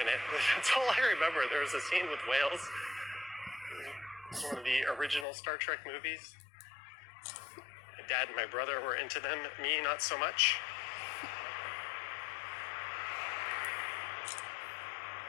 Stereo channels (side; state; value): right; drops out; at 5.2 s